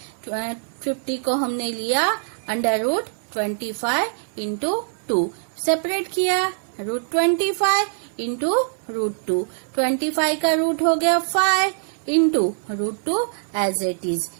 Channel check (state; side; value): silent; left; 58 dB below the other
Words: 50 को हमने लिया अंडर रूट 25 इंटू 2, सेपरेट किया रूट 25 इंटू रूट 2। 25 का रूट हो गया 5 into root 2 as it is.